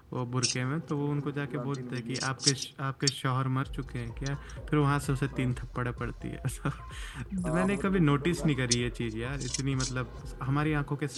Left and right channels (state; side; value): identical; both; correlation 1.00